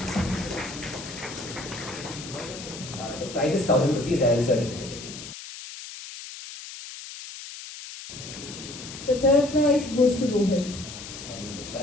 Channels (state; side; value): noise; left; hiss, 12 dB below the sound